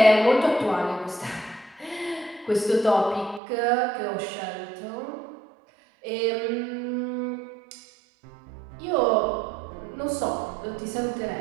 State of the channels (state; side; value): drops out; left; at 3.4 s